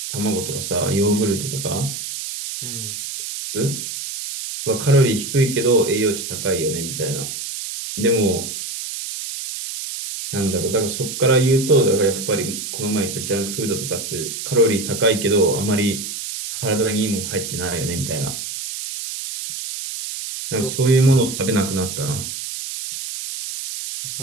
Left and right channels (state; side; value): noise; right; hiss, 7 dB below the sound